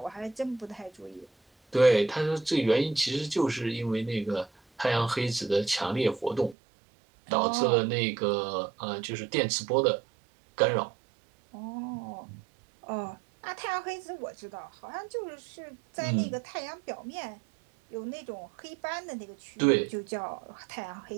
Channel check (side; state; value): left; drops out; at 6.6 s